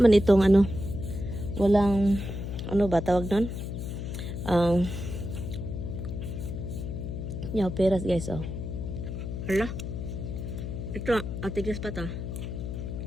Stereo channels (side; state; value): left; noise; hum, 5 dB below the sound